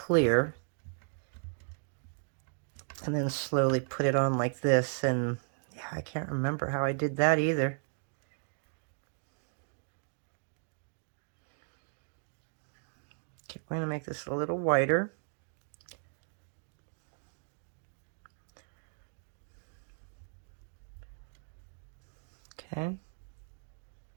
and then slowly put it on like this. And yeah, I can't remember how I did that either. Okay, we're going to make this a little whiter. Okay.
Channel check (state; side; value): silent; left; 54 dB below the other